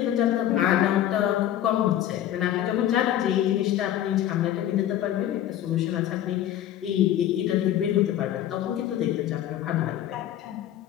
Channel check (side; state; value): right; quieter; 11.8 dB